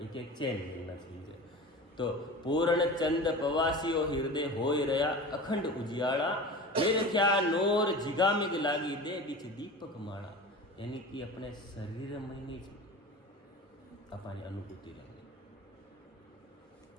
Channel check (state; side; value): normal; both; correlation 0.34